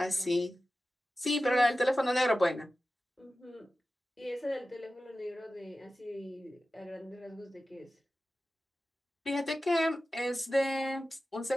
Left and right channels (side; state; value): both; normal; correlation 0.94